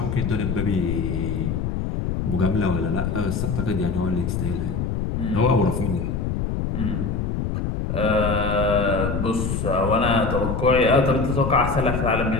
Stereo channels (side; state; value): left; noise; rumble, 1 dB below the sound